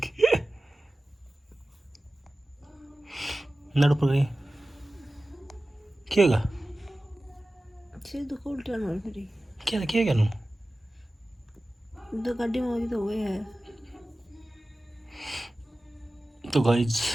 नेट ऊपर करी क्या होगा सिर दुख उल्टा ना फिर क्या क्या नू तो गाड़ी में तो हुए है तो गाइज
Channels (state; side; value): normal; both; correlation 0.96